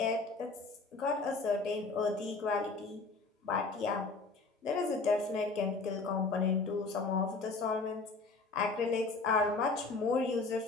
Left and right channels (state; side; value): quieter; right; 3.9 dB